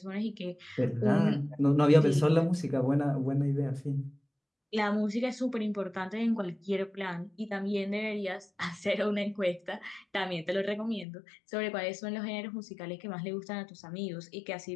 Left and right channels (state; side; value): drops out; right; at 11.1 s